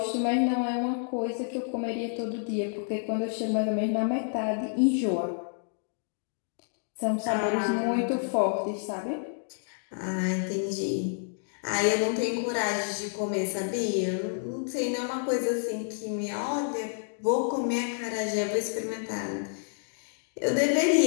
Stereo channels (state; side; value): silent; right; digital silence